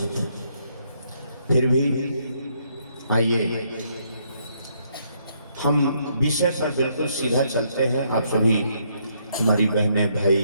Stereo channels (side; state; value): both; inverted; correlation -0.72